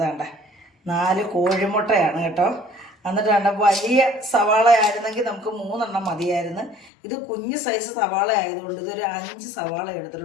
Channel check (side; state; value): right; drops out; at 6.9 s